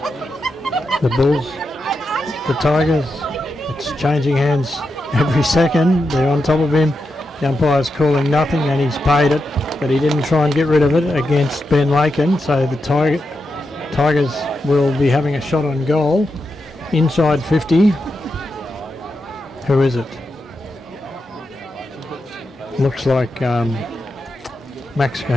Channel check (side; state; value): both; normal; correlation 0.87